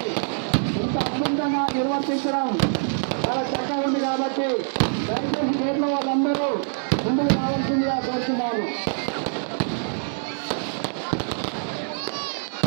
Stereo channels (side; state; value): left; silent; digital silence